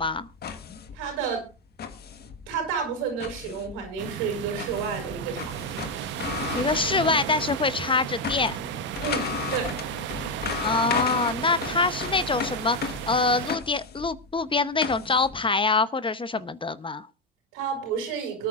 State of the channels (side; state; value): both; normal; correlation 0.06